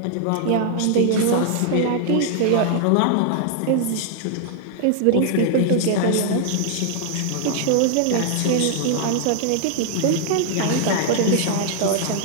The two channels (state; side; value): different; both; correlation 0.00